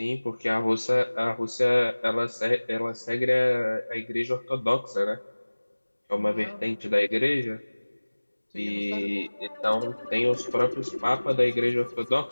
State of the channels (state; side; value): inverted; both; correlation -1.00